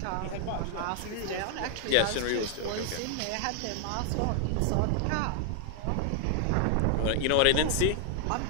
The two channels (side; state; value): both; different; correlation 0.00